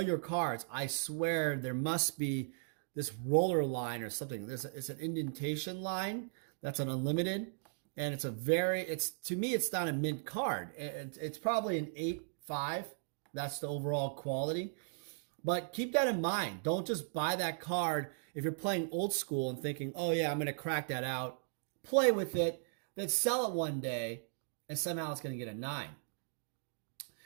your cards. I swear there must be this roller line or something. It's an indentation line. That's an unlimited. And to me, it's not a mint card. It's probably an 8-5. That's the overall quality. But keep that in mind. Don't just buy that card if you're playing old school and thinking, oh yeah, I'm going to crack that out. Play with it, then sell it one day, and somehow it's going to get a 9.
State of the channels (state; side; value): silent; left; digital silence